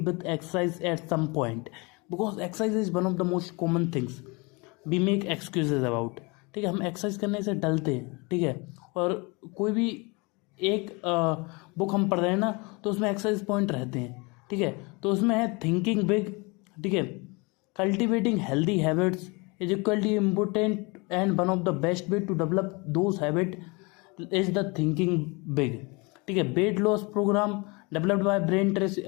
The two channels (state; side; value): quieter; right; 28.0 dB